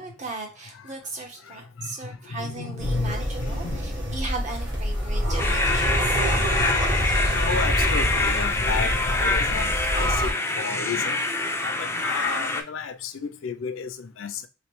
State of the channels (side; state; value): both; normal; correlation 0.37